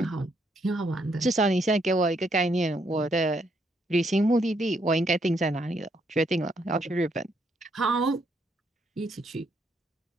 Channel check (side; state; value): both; normal; correlation 0.74